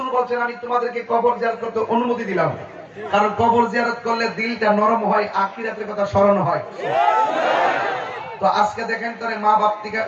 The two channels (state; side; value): identical; both; correlation 1.00